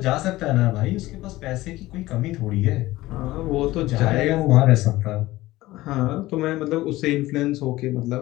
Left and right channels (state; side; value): quieter; right; 17.7 dB